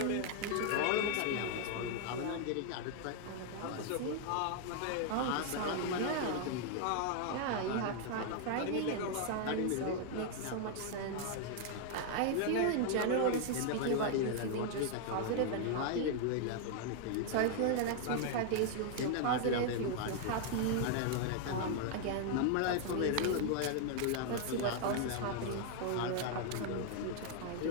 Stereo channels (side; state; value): both; different; correlation 0.00